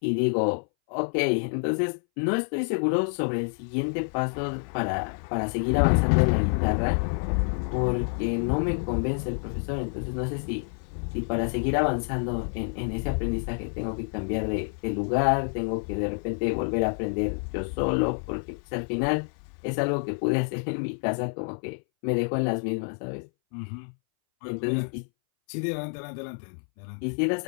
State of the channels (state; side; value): silent; right; 60 dB below the other